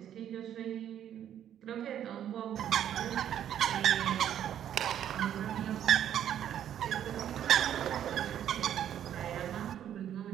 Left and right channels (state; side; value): quieter; left; 10.3 dB